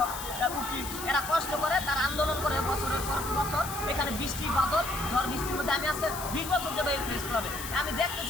উকিল, এরা কষ্ট করে, তারা আন্দোলন করে বছরের পর বছর। এখানে বৃষ্টি বাদল ঝড় বৃষ্টির মধ্যে আমি আজকে 20 বছর যাবে এই প্রেস ক্লাবে, আমি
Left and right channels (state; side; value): noise; left; hiss, 9 dB below the sound